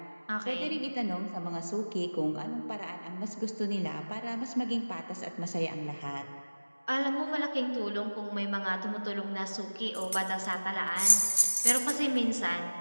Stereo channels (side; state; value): both; inverted; correlation -1.00